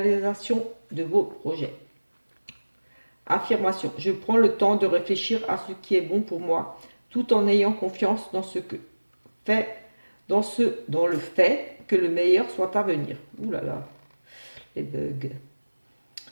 de vos projets. Affirmation. Je prends le temps de réfléchir à ce qui est bon pour moi, tout en ayant confiance dans ce que fait, dans le fait que le meilleur soit à venir. Ouh là là, les bugs.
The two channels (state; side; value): inverted; both; correlation -1.00